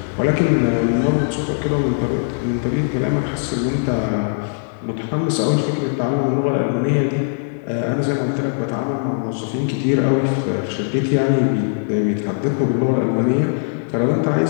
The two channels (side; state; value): right; silent; 66 dB below the other